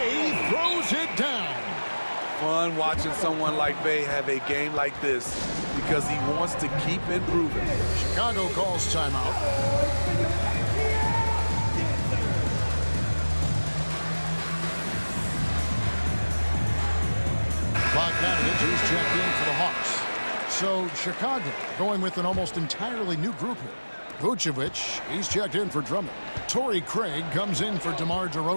throws it down. Fun watching someone like Bay have a game like this because he wants to keep improving. Chicago calls timeout. Bogdanovich is checked in for the Hawks. So Chicago going with an almost entirely new group here. Vucevic, he's checked in for Drummond. Torrey Craig comes in for DeMar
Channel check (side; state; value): both; inverted; correlation -1.00